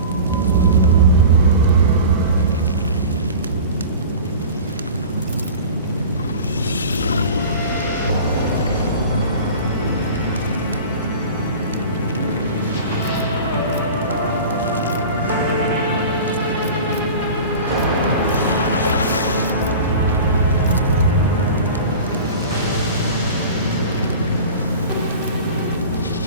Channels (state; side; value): inverted; both; correlation -0.37